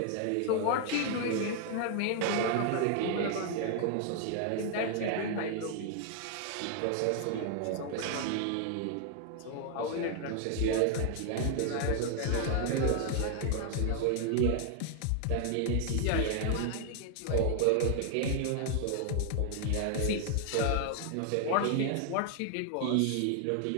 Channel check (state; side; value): different; both; correlation 0.00